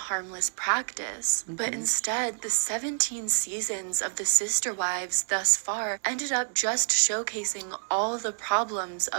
practice. But instead, the 17 seasons of The Sister Wives thus far ended up just showcasing all the problems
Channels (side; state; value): left; silent; digital silence